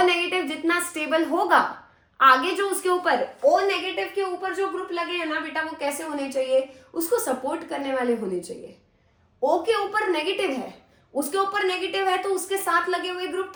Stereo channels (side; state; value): both; identical; correlation 1.00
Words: नेगेटिव जितना स्टेबल होगा, आगे जो उसके ऊपर O नेगेटिव के ऊपर जो ग्रुप लगे हैं ना बेटा, वो कैसे होने चाहिए? उसको सपोर्ट करने वाले होने चाहिए। O के ऊपर नेगेटिव है, उसके ऊपर नेगेटिव है, तो उसके साथ लगे हुए ग्रुप